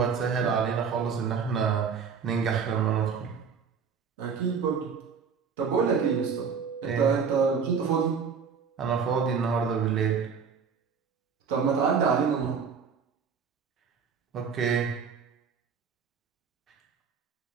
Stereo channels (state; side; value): quieter; left; 6.1 dB